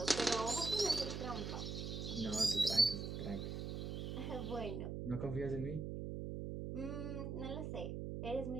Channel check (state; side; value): noise; right; hum, 4 dB below the sound